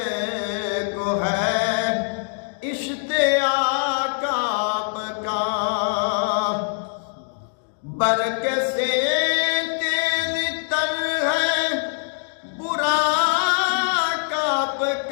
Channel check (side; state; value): right; silent; digital silence